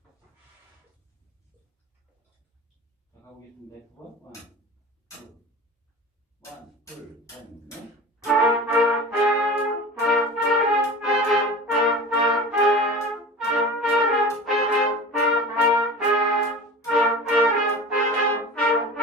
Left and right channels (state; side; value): normal; both; correlation 0.35